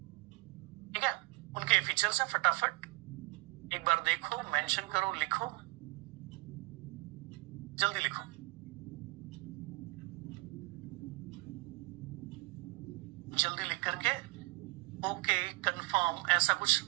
ठीक है, उनके फीचर्स हैं, फटाफट एक बार देखो, मेंशन करो, लिखो, जल्दी लिखो। जल्दी लिख करके ओके, कंफर्म, ऐसा कुछ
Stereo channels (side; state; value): left; quieter; 25.9 dB